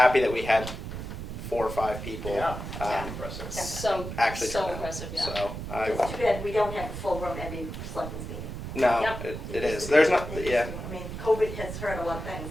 that we had 4 or 5 people. Yeah. Impressive. So Actually so turn out. impressive. Yeah. So I, it's too bad we don't have a full room every selectmen's meeting. no, Yep. it is. There's not, yeah. I mean, COVID has hurt a lot of things,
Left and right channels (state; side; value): noise; right; rumble, 8 dB below the sound